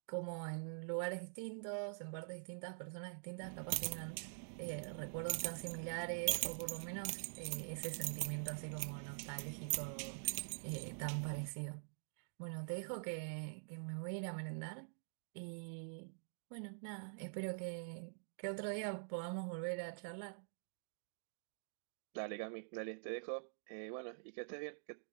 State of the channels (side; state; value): left; silent; digital silence